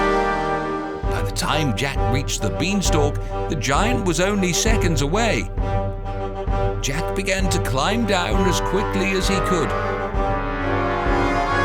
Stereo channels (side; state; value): both; identical; correlation 1.00